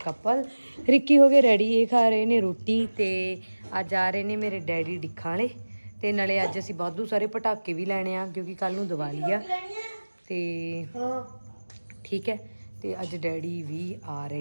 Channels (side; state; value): both; inverted; correlation -1.00